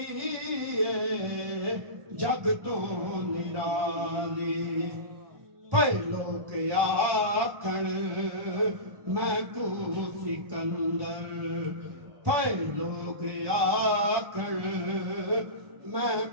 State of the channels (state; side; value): late; left; 1.2 ms